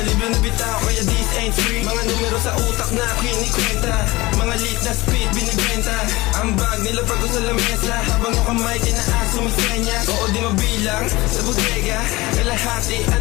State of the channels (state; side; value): quieter; right; 20.9 dB